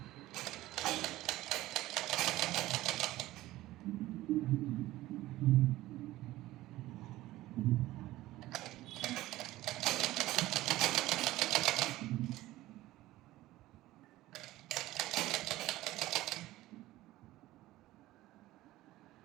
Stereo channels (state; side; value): quieter; left; 16.5 dB